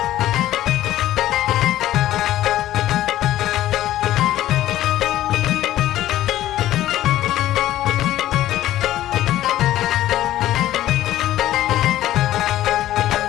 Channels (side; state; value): right; quieter; 13.8 dB